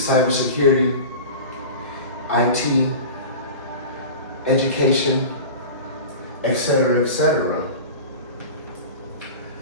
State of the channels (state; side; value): inverted; both; correlation -0.33